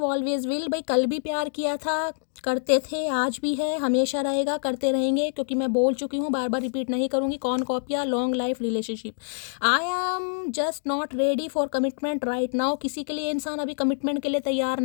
always will. भाई कल भी प्यार किया था, करते थे, आज भी है, हमेशा रहेगा, करते रहेंगे, क्योंकि मैं बोल चुकी हूँ, बार बार रिपीट नहीं करूँगी। कौन कॉपिया, long life relationship. I am just not ready for commitment right now. किसी के लिए इंसान अभी कमिटमेंट के लिए तैयार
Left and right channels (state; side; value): silent; right; digital silence